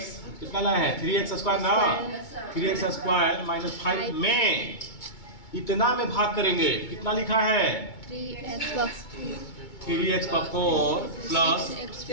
कितना लाए हैं, 3x स्क्वायर ना, 3x स्क्वायर माइनस 5 में इतना में भाग करेंगे, कितना लिखा है 3x पर 4 प्लस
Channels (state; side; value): late; right; 2.2 ms